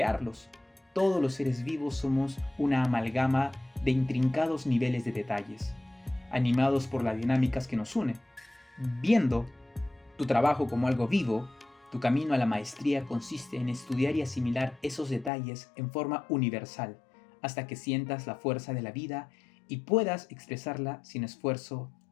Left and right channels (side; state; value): right; drops out; at 15.3 s